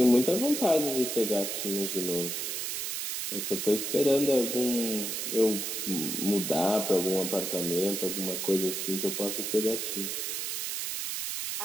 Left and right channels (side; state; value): right; noise; hiss, 3 dB below the sound